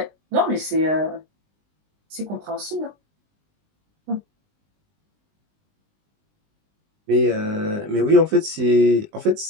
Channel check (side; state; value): left; late; 20 ms